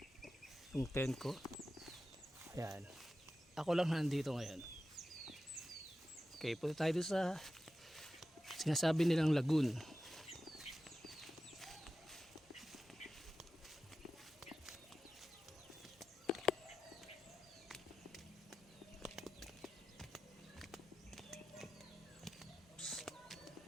yung tent ko. Ayan, ako lang nandito ngayon. Okay, punta tayo doon sa sinasabi nilang lagoon.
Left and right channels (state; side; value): normal; both; correlation 0.92